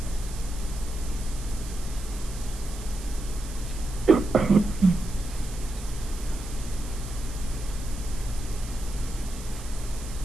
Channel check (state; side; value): noise; right; hiss, 15 dB below the sound